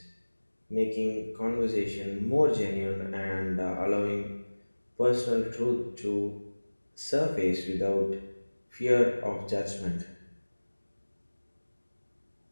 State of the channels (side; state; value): both; inverted; correlation -1.00